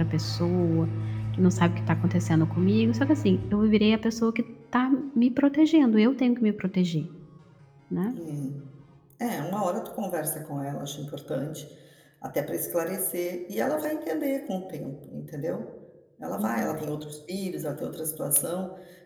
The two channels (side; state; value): both; identical; correlation 1.00